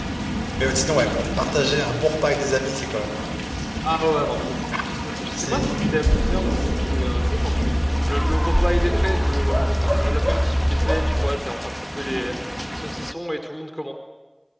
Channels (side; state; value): both; identical; correlation 1.00